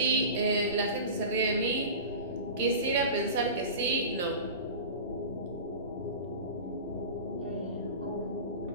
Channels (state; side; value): inverted; both; correlation -0.32